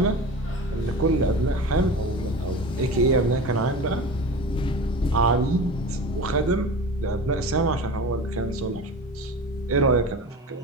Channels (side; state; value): both; normal; correlation 0.32